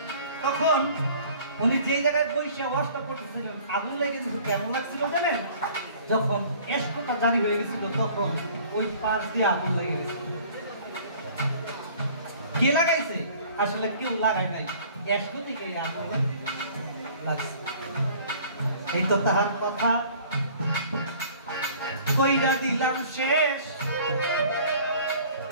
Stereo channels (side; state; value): both; inverted; correlation -0.51